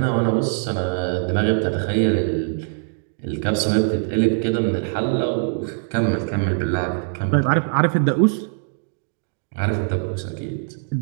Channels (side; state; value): left; silent; digital silence